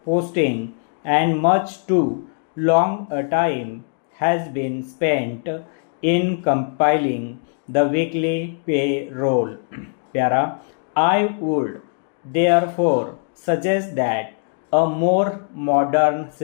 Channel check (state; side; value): silent; right; 59 dB below the other